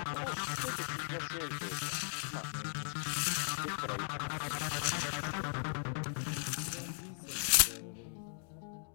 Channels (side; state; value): right; silent; digital silence